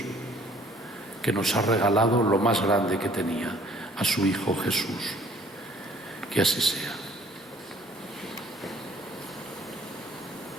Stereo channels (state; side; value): normal; both; correlation 0.58